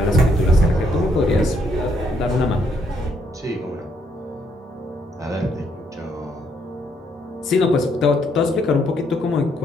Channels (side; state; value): both; normal; correlation 0.72